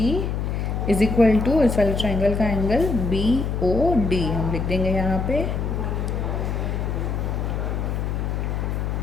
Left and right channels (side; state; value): left; noise; hum, 1 dB below the sound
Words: is equal to इस वाले ट्रायंगल का एंगल बी ओ डी, हम लिख देंगे यहाँ पे।